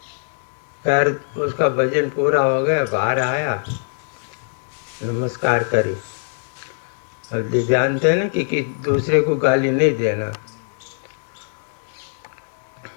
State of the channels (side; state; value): right; silent; digital silence